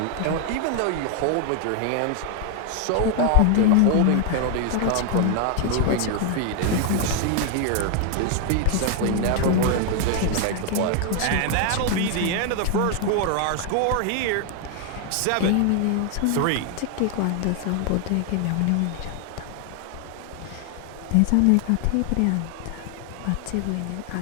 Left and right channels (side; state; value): both; different; correlation 0.00